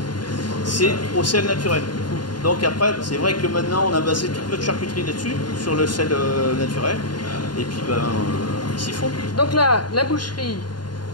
C'est au sel naturel. Donc après, c'est vrai que maintenant, on a basé toute notre charcuterie là-dessus, sur le sel naturel. Et puis, ben, ils s'y font. Donc là, la boucherie,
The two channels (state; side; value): late; right; 0.71 ms